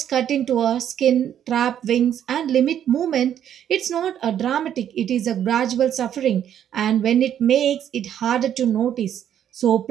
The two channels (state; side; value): quieter; left; 9.9 dB